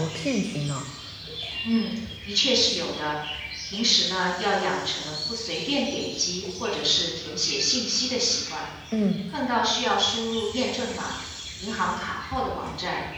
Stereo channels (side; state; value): both; identical; correlation 1.00